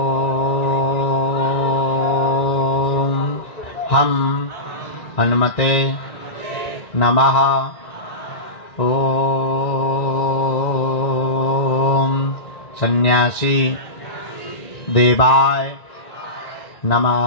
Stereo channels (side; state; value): right; late; 1.9 ms